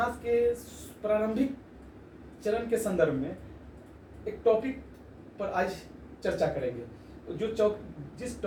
के प्रारंभिक चरण के संदर्भ में एक टॉपिक पर आज चर्चा करेंगे। जिस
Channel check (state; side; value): identical; both; correlation 1.00